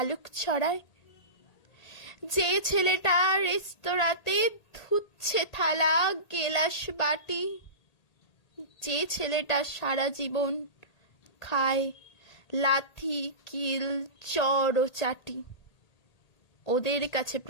ছড়ায়, যে ছেলেটা রেস্তোরাঁতে ধুচ্ছে থালা গেলাস বাটি, যে ছেলেটা সারা জীবন খায় লাথি কিল চড় ও চাটি, ওদের কাছে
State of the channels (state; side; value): late; right; 1.8 ms